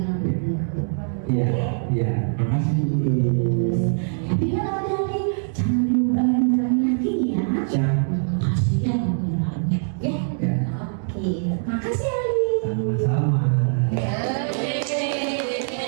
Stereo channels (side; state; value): left; silent; digital silence